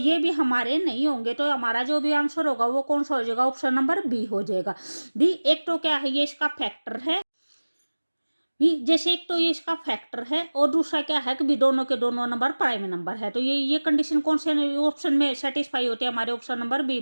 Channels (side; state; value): both; inverted; correlation -1.00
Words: भी हमारे नहीं होंगे। तो हमारा जो भी आंसर होगा वो कौन सा हो जाएगा, ऑप्शन नंबर बी हो जाएगा। बी एक तो क्या है, ये इसका फैक्टर है, जैसे एक तो ये इसका फैक्टर है, और दूसरा क्या है कि भी दोनों के दोनों नंबर प्राइम नंबर है। तो ये कंडीशन कौन से ऑप्शन में सेटिस्फाई होती है, हमारे ऑप्शन नंबर बी